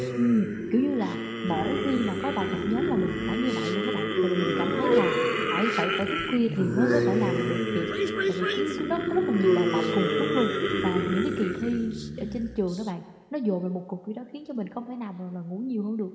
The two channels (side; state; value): both; identical; correlation 1.00